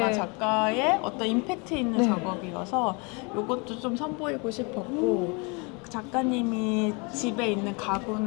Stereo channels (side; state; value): right; quieter; 30.8 dB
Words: 네. 작가의 어떤 임팩트 있는 네. 작업이어서 이것도 좀 선보이고 싶었고 작가님이 집에 있는